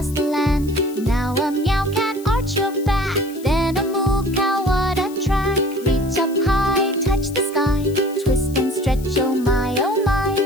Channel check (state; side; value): noise; left; hiss, 20 dB below the sound